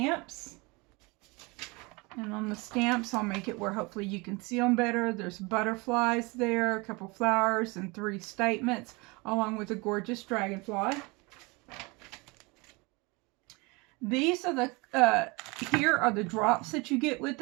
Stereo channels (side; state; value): left; quieter; 26.7 dB